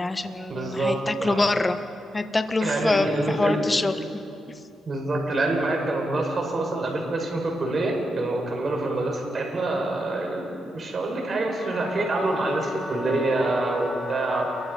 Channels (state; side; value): normal; both; correlation 0.85